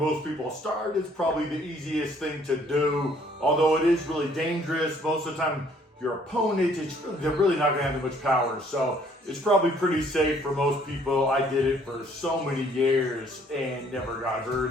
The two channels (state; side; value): normal; both; correlation 0.61